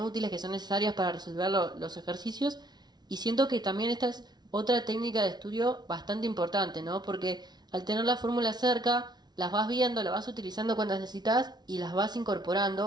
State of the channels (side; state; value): left; late; 0.20 ms